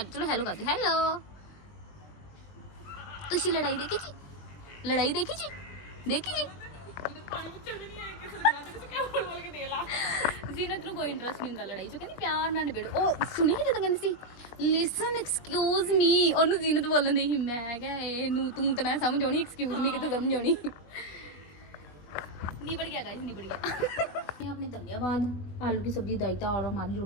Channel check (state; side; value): late; right; 21 ms